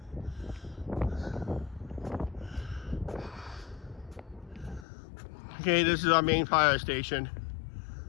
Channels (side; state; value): right; drops out; at 4.9 s